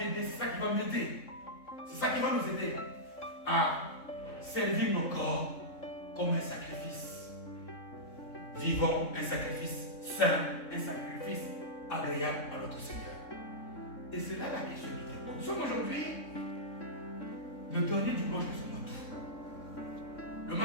c'est ça qui va m'aider. C'est ça qui va nous aider à servir nos corps comme un sacrifice vivant, un sacrifice saint, un sacrifice agréable à notre Seigneur. Et c'est là la question du temps. Nous sommes aujourd'hui le dernier dimanche de ce mois d'août. Le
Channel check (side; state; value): right; late; 3.6 ms